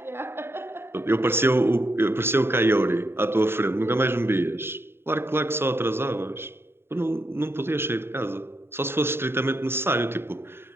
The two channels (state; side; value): late; left; 0.11 ms